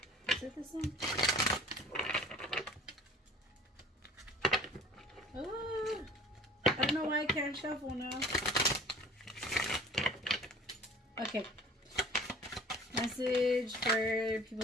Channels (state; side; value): normal; both; correlation 0.48